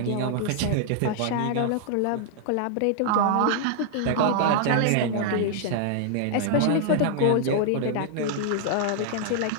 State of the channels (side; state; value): both; different; correlation 0.00